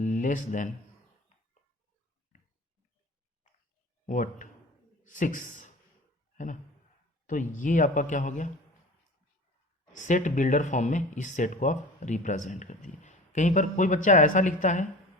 what 6, है ना। तो ये आपका क्या हो गया, सेट बिल्डर फॉर्म में इस सेट को आप रिप्रेजेंट कर दिए। कहीं पर कोई बच्चा ऐसा लिखता है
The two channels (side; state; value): both; normal; correlation 0.38